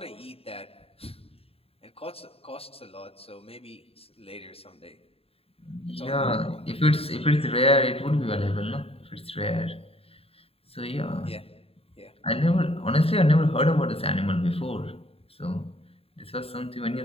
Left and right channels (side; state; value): right; late; 0.28 ms